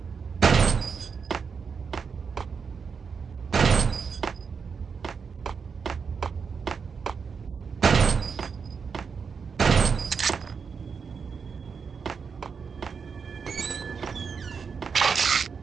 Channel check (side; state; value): left; quieter; 5.8 dB